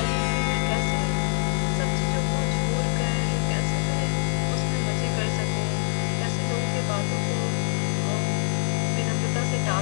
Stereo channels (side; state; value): right; silent; digital silence